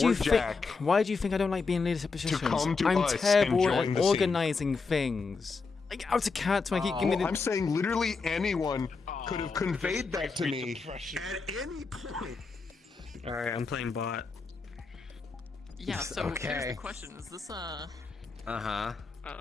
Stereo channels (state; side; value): quieter; right; 4.5 dB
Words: for you Jack. Why do you think I don't like being in leadership positions? come to I'm us and terrible join at the scene. organizing things. Like out of character, I keep giving me the. I'm saying literally anyone could have conveyed that to me at any point. All right, I'm playing bot. Yeah. So here's the question: is this Uh-huh. I